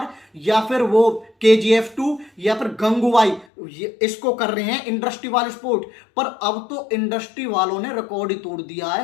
या फिर वो KGF 2 या फिर गंगूबाई इसको कर रहे हैं इंडस्ट्री वाले सपोर्ट। पर अब तो इंडस्ट्री वालों ने रिकॉर्ड ही तोड़ दिया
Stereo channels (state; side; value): drops out; right; at 3.5 s